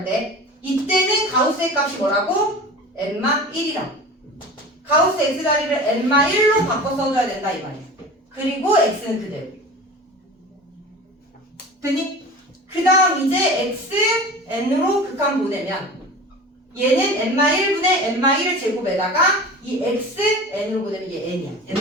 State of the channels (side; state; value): both; normal; correlation 0.36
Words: 때 이때는 가우스의 값이 뭐라고? n-1이라. 가우스 x 자리를 n-1로 바꿔 써줘야 된다 이 말이야. 그리고 x는 그대로. 됐니? 그 다음 이제 x n으로 극한 보내면 얘는 n-1분의 n-1을 제곱에다가 이 x n으로 보내면 얘 n이야.